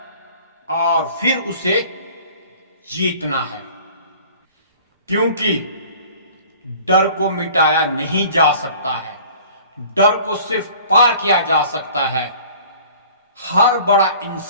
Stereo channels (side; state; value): both; inverted; correlation -0.48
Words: और फिर उसे जीतना है। क्योंकि डर को मिटाया नहीं जा सकता है, डर को सिर्फ पार किया जा सकता है। हर बड़ा